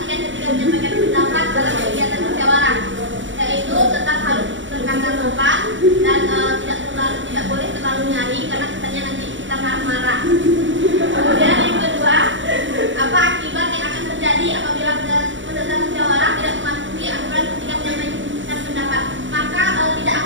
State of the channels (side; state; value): left; late; 0.55 ms